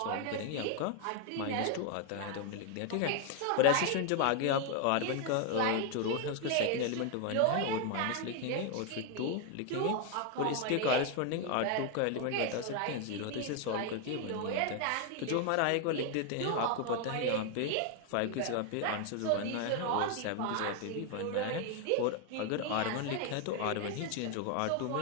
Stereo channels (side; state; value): both; different; correlation 0.01